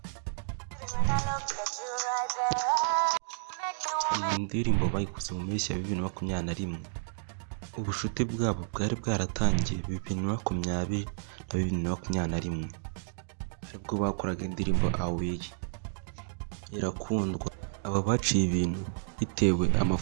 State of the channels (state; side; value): silent; left; digital silence